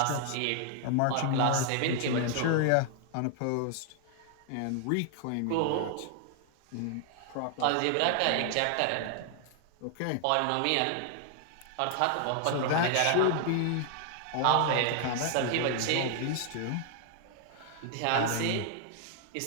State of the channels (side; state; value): both; different; correlation 0.00